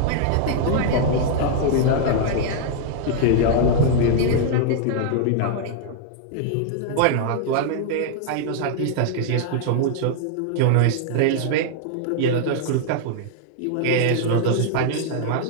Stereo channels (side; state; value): both; different; correlation -0.01